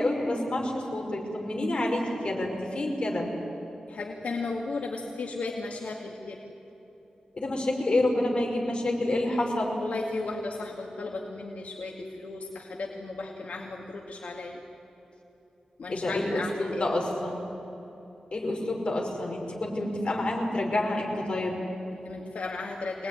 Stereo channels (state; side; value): normal; both; correlation 0.92